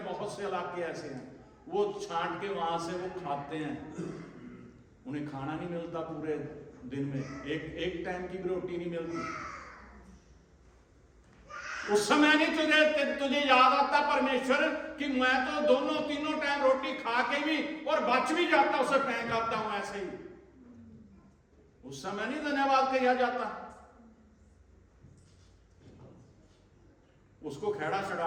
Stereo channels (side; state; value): both; identical; correlation 1.00